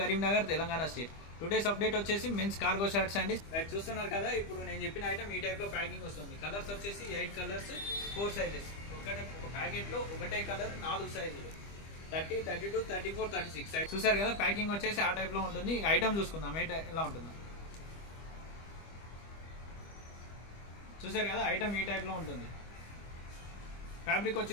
Telangana state. Today's update వచ్చేసి men's cargo shirts అండి. Right చూస్తున్నారు కదా, ఇప్పుడు నేను చెప్పిన ఐటమ్ ఈ టైప్ లో ప్యాకింగ్ వస్తుంది. కలర్స్ వచ్చేసి 8 కలర్స్ 4 సైజెస్. ఒక ప్యాకెట్ లో ఒకటే కలర్ 4 సైజులు 30, 32, 34, 36. చూసారు కదా, ప్యాకింగ్ వచ్చేసి ఆ టైప్ లో ఉంటుంది. ఐటమ్ చూసుకుందాం ఎలా ఉంటుందో. చూసారు కదా, ఐటమ్ ఈ టైప్ లో ఉంటుంది. ఫ్యాబ్రిక్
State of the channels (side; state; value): right; late; 25 ms